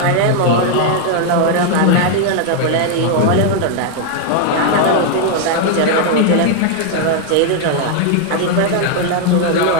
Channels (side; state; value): both; different; correlation 0.00